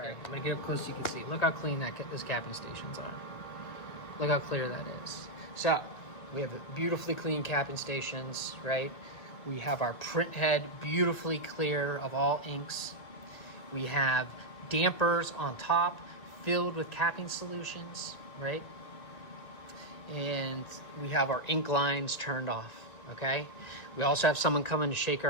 get up close so you can see. Look how clean those capping stations are. Look how clear that is. So we have the beautifully clean capping stations, right? We have our print head beautifully clear of all inks. We have dampers on top filled with capping solutions, right? And we have our ink lines turned off, okay? We also have someone coming to shake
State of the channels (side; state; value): right; late; 2.0 ms